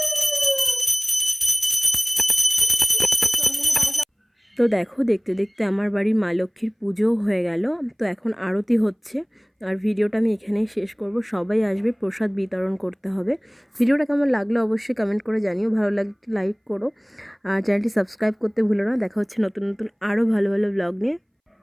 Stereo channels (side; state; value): both; identical; correlation 1.00